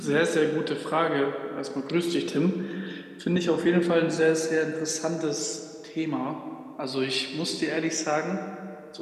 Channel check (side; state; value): both; identical; correlation 1.00